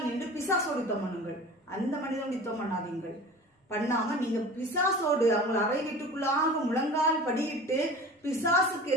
நின்று பிசாசோடு யுத்தம் பண்ணுங்கள். அந்த மனிதனோடு யுத்தம் பண்ணாதீங்கள். பண்ணாம நீங்க பிசாசோடு அவங்க அறை வீட்டுக்குள்ளாக முழங்கால் படியிட்டு பிசாசுக்கு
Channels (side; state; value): both; normal; correlation 0.38